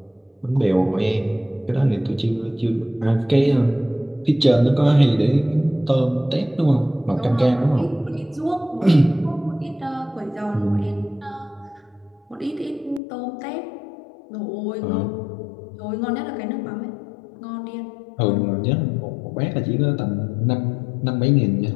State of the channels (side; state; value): right; drops out; at 13.0 s